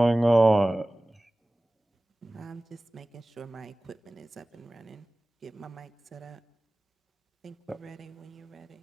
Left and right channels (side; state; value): both; normal; correlation 0.98